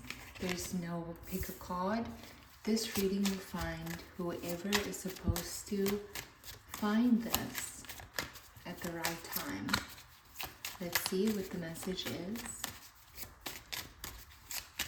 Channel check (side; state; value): both; identical; correlation 1.00